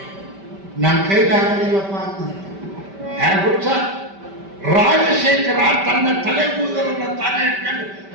ನನ್ನ ಕೈಲಾಗಲಿಲ್ಲಪ್ಪ ಅಂತ. ಹುಚ್ಚ ರಾಜಶೇಖರ ತನ್ನ ತಲೆ ಕೂದಲನ್ನ ತಾನೇ ಇಟ್ಕೊಂಡು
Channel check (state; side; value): late; left; 5.1 ms